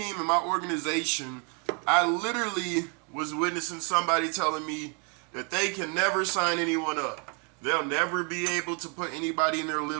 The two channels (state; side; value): quieter; left; 36.1 dB